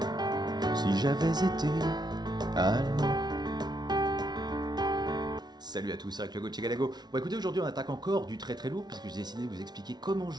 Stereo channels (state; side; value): late; left; 0.20 ms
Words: si j'avais été allemand? Salut à tous, c'est avec le Gauthier Galago. Bon écoutez, aujourd'hui on attaque encore du très très lourd puisque j'ai décidé de vous expliquer comment